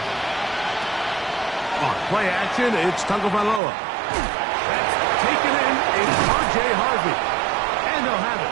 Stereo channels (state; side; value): drops out; left; at 3.6 s